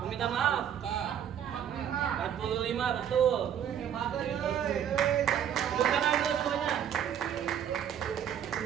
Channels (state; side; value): quieter; left; 9.3 dB